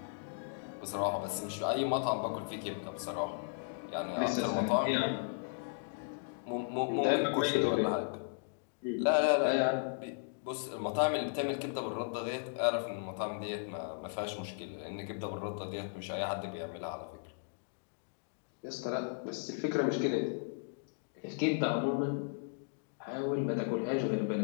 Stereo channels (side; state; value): right; silent; digital silence